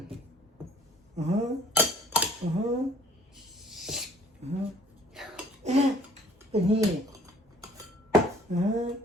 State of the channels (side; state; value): both; normal; correlation 0.54